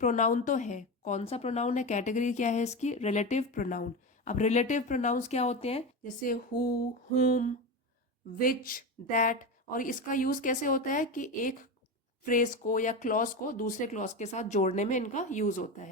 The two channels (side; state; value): both; normal; correlation 0.20